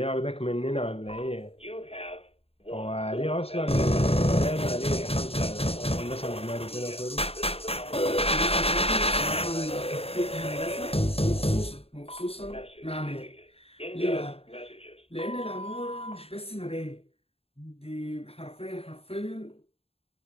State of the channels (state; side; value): late; right; 0.28 ms